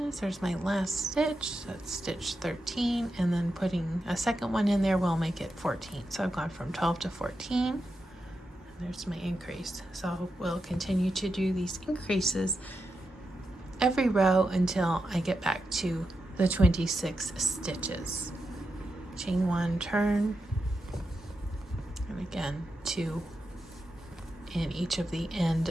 There's my last stitch. That's stitch 13, and then putting a second one in there will make it 14. So I've gone from 12 to 14. And there's my increase. So we'll continue to do these increases every row until I get back to the 26 stitches. Chain 1, turn, and again 2 in each of the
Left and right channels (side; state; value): both; normal; correlation 0.88